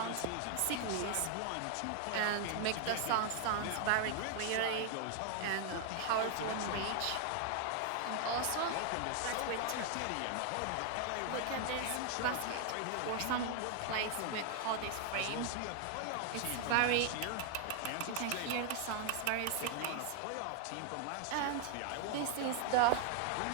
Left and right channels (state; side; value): different; both; correlation 0.00